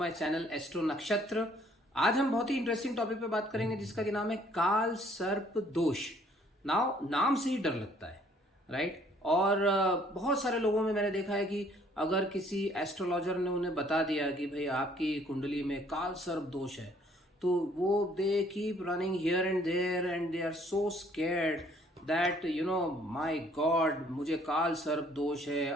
channel Astro Nakshatra. आज हम बहुत ही इंटरेस्टिंग टॉपिक पे बात करेंगे जिसका कि नाम है काल सर्प दोष। नाम से ही डर लगता है, राइट। और बहुत सारे लोगों में मैंने देखा है कि अगर किसी एस्ट्रोलॉजर ने उन्हें बता दिया कि भाई आपकी कुंडली में काल सर्प दोष है, तो वो they keep running here and there and they are so scared that my god, मुझे काल सर्प दोष है,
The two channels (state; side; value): normal; both; correlation 0.61